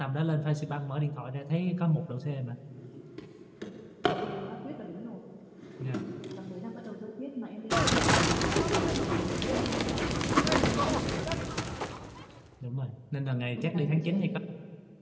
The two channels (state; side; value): identical; both; correlation 1.00